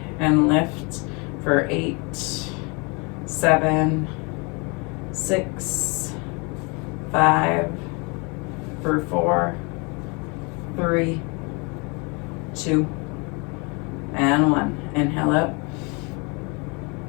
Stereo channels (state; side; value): quieter; right; 30.6 dB